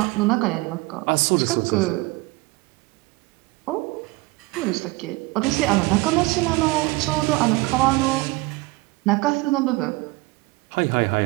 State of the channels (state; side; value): quieter; left; 22.6 dB